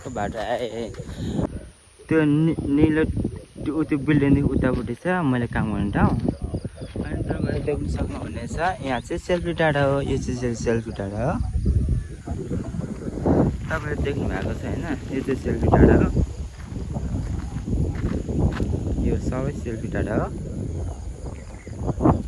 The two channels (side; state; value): both; identical; correlation 1.00